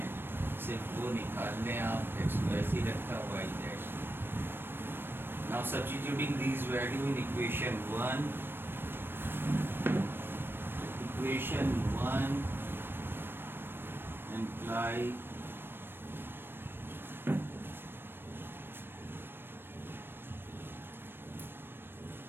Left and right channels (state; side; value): late; left; 0.10 ms